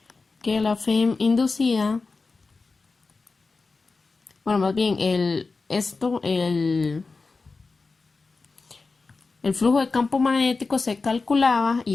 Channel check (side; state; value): right; quieter; 4.0 dB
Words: que la FEM inducida, bueno, más bien el flujo de campo magnético se calculaba,